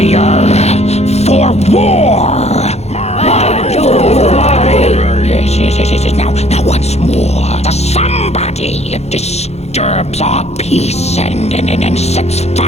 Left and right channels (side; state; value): right; late; 0.31 ms